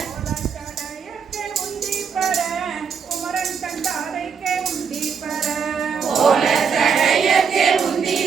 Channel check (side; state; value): left; quieter; 6.3 dB